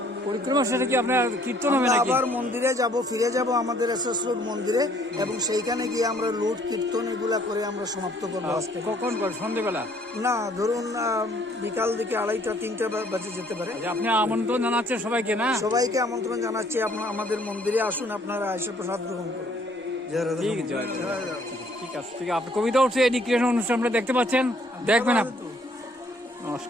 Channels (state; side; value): normal; both; correlation 0.62